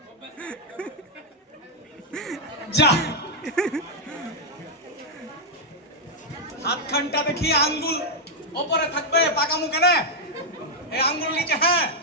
যা হাতখানটা দেখি আঙ্গুল ওপরে থাকবে, পাকামু কেন? এই আঙ্গুল নিচে। হ্যাঁ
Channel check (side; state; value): both; normal; correlation -0.02